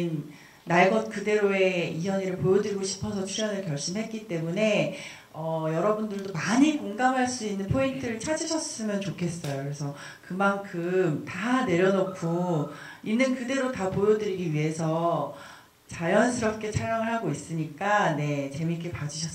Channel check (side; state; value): both; identical; correlation 1.00